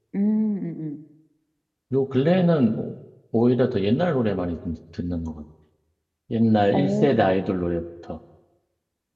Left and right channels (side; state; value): both; identical; correlation 1.00